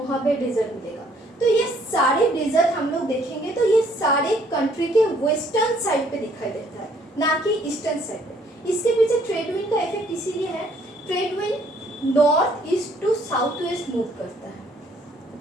डेजर्ट मिलेगा। तो ये सारे डेजर्ट हम लोग देखेंगे तो ये सारे कंट्री के वेस्टर्न साइड पे दिखाई देता है, ना कि ईस्टर्न साइड पे। इसके पीछे ट्रेड विंड का इफेक्ट इसीलिए है, trade wind north east to south west move करता है,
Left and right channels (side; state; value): both; normal; correlation 0.64